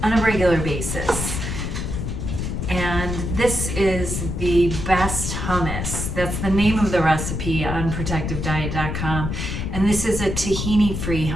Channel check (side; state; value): left; noise; rumble, 3 dB below the sound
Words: on a regular basis. And this is the best hummus. That's the name of the recipe on protectivediet.com. And this is a tahini-free